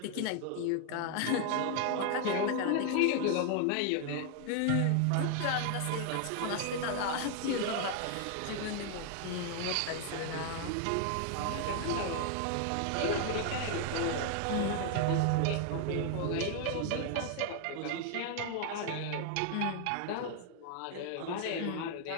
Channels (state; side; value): different; both; correlation 0.00